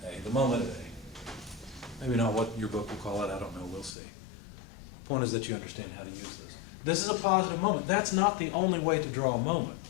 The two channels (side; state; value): right; drops out; at 3.9 s